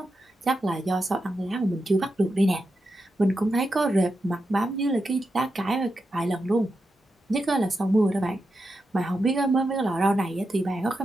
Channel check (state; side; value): normal; both; correlation 0.88